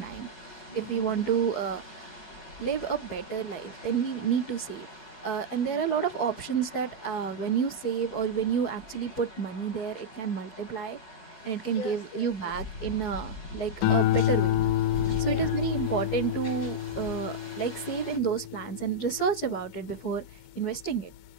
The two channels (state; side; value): late; right; 14 ms